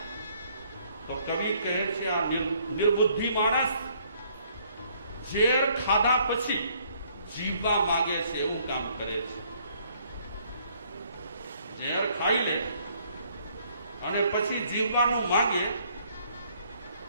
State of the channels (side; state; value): both; inverted; correlation -0.65